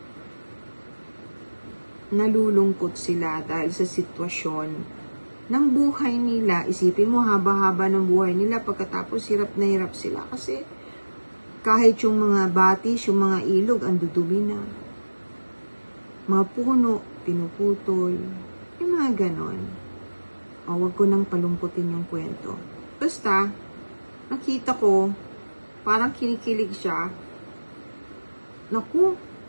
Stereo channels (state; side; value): inverted; both; correlation -1.00